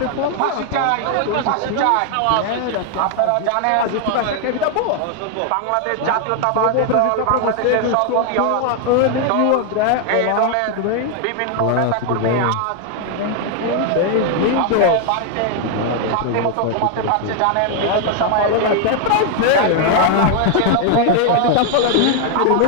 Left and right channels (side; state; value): both; different; correlation 0.00